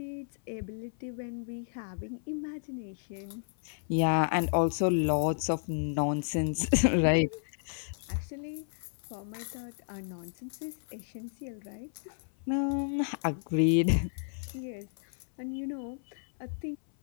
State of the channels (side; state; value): right; silent; 56 dB below the other